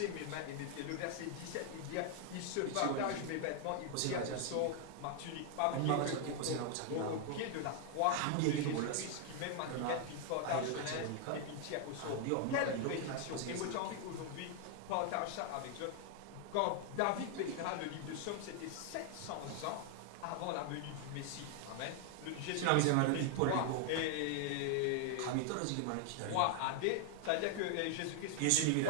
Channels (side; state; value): both; different; correlation 0.00